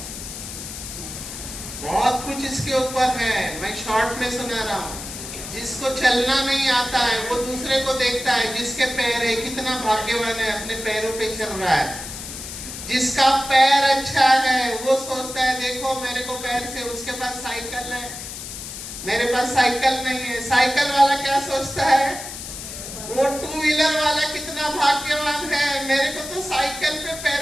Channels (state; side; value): noise; left; hiss, 9 dB below the sound